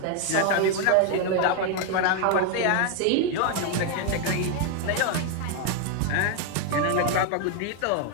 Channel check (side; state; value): both; different; correlation 0.01